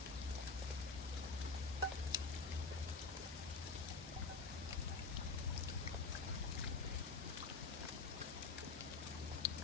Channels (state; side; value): quieter; right; 4.3 dB